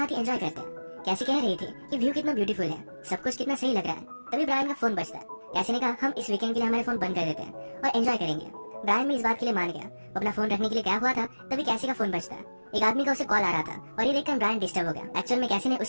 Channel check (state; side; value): inverted; both; correlation -1.00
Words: ही एंजॉय करते हैं। कैसी कह रही थी कि व्यू कितना ब्यूटीफुल है, सब कुछ कितना सही लग रहा है। तभी ब्रायन का फोन बजता है। कैसी ने कहा हम इस वीकेंड के लिए हमारे फोन बंद कर देते हैं और एंजॉय करेंगे। ब्रायन भी इस बात के लिए मान गया। वो अपना फोन रखने के लिए गया हुआ था, तभी कैसी का फोन बजता है। एक आदमी का उसे कॉल आ रहा था और ये देखकर ब्रायन डिस्टर्ब हो गया। एक्चुअल में कैसी ने